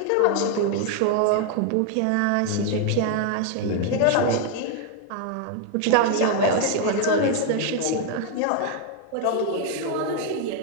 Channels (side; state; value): both; different; correlation 0.00